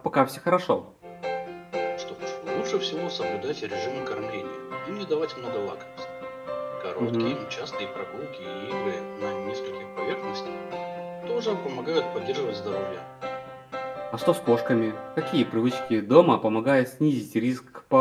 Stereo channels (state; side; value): identical; both; correlation 1.00